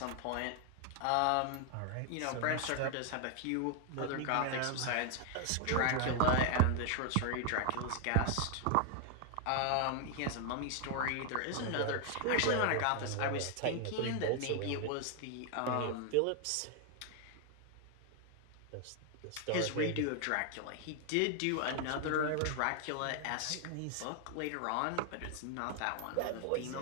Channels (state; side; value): different; both; correlation 0.00